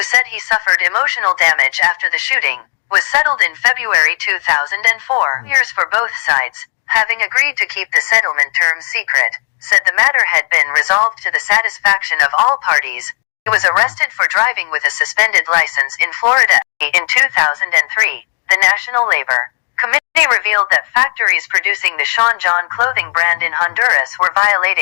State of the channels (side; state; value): right; quieter; 39.6 dB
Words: said he suffered emotional damage after the shooting, was settled in February 2004. Years for both sides, having agreed to keep the settlement terms secret, said the matter had been resolved to the satisfaction of all parties. He was arrested for driving with a suspended license in Florida. In 2003, the National Labor Committee revealed that factories producing the Sean John clothing brand in Honduras were